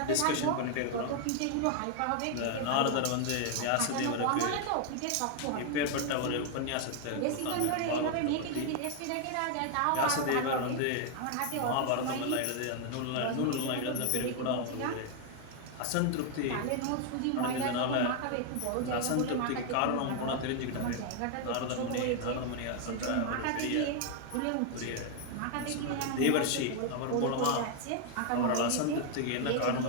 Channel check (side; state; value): both; different; correlation 0.00